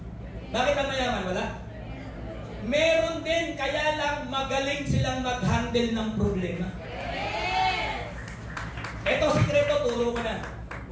Bakit ang mayaman wala? Meron din, kaya lang magaling silang mag-handle ng problema. Ito, sikreto, turo ko na.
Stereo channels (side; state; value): both; identical; correlation 1.00